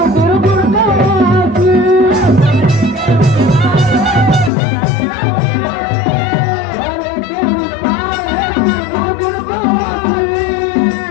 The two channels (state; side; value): drops out; right; at 4.5 s